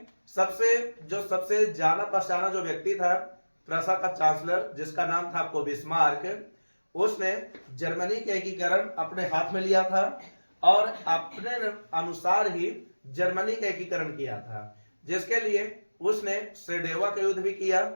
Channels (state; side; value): inverted; both; correlation -1.00